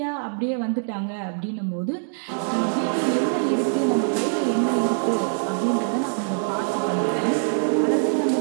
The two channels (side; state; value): left; silent; digital silence